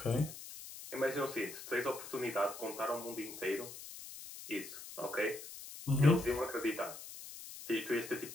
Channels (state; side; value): noise; left; hiss, 12 dB below the sound